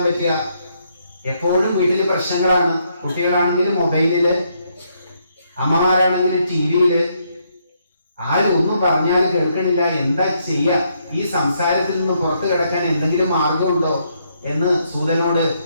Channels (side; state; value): both; inverted; correlation -0.74